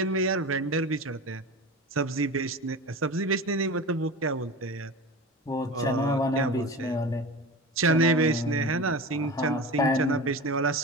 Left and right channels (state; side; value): normal; both; correlation 0.30